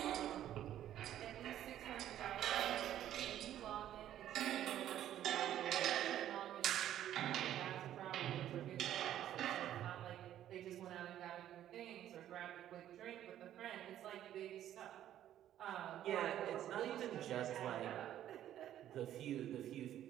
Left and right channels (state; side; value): quieter; left; 11.7 dB